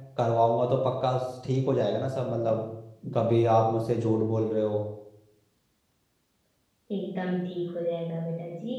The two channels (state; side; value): identical; both; correlation 1.00